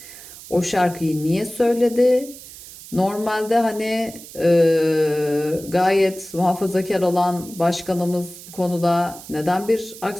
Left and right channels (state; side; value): noise; right; hiss, 16 dB below the sound